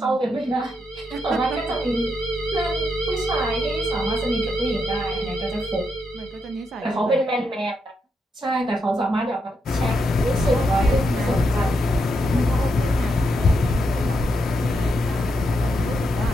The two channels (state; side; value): normal; both; correlation 0.82